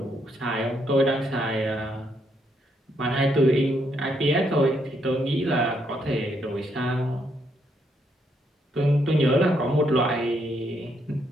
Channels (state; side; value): normal; both; correlation 0.75